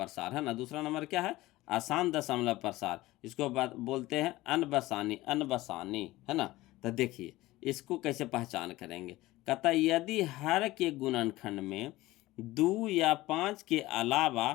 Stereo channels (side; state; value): right; quieter; 18.2 dB